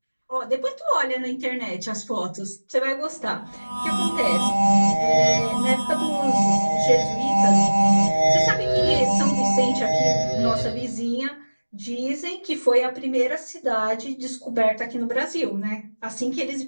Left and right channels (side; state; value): both; inverted; correlation -1.00